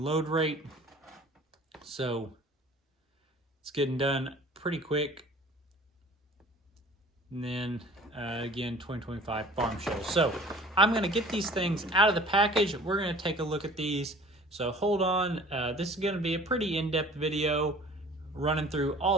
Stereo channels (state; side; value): normal; both; correlation 0.47